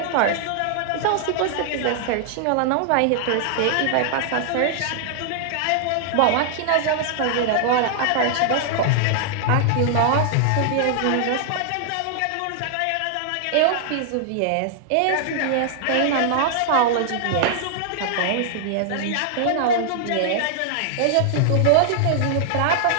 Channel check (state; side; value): different; both; correlation -0.01